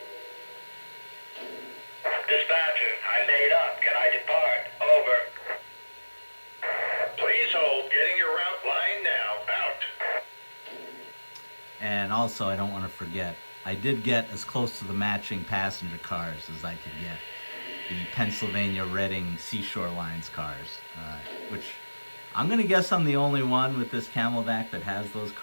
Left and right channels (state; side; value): inverted; both; correlation -1.00